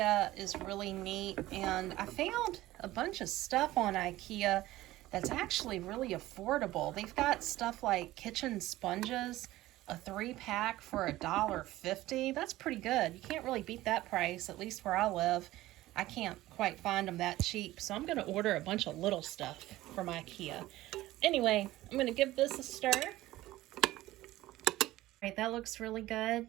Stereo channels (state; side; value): quieter; left; 16.5 dB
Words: is really neat, and I found a bunch of stuff on IKEA that's actually really affordable. They've got stuff like kitchen sponges, a 3-pack for $1.50. That's pretty good. You can't really beat that price, at least where I live. I can't quite find them that cheap, so I'm gonna order a bunch of little stuff from IKEA. Anyway, I'm gonna give this a stir. All right, that looks really good.